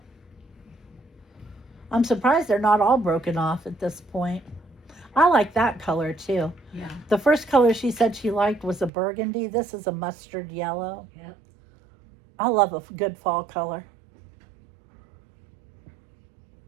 I'm surprised they're not all broken off at this point. I like that color too. Yeah. The first color she said she liked was a burgundy. This is a mustard yellow. Yep. I love a good fall color.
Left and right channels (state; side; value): drops out; left; at 8.9 s